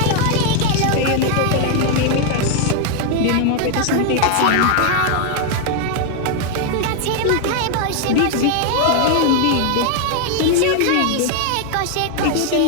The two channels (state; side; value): different; both; correlation 0.00